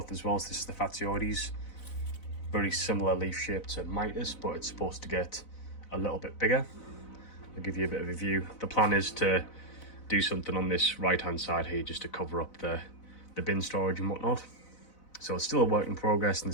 as well. So this is the Fatioides. Very similar leaf shape to Mitis, but it's supposed to get a little bit bigger. I'll give you a bit of a view. The plan is to do something on this right hand side here just to cover up the bin storage and whatnot. So it's still a work in progress and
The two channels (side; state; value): right; late; 4.0 ms